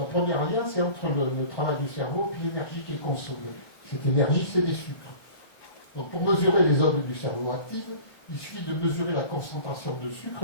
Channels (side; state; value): right; late; 1.1 ms